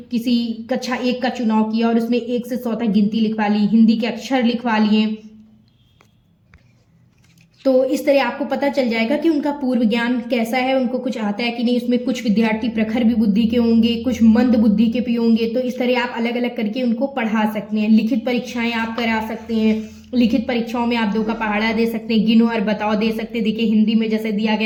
किसी कक्षा 1 का चुनाव किया और उसमें 1 से 100 तक गिनती लिखवा ली, हिंदी के अक्षर लिखवा लिए, तो इस तरह आपको पता चल जाएगा कि उनका पूर्व ज्ञान कैसा है, उनको कुछ आता है कि नहीं। उसमें कुछ विद्यार्थी प्रखर भी बुद्धि के होंगे, कुछ मंद बुद्धि के भी होंगे, तो इस तरह आप अलग अलग करके उनको पढ़ा सकते हैं। लिखित परीक्षाएं आप करा सकते हैं। लिखित परीक्षाओं में आप 2 का पहाड़ा दे सकते हैं, गिनो और बताओ दे सकते हैं। देखिए हिंदी में जैसे दिया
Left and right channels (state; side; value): identical; both; correlation 1.00